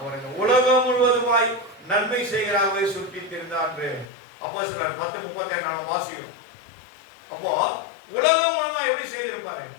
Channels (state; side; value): drops out; right; at 4.1 s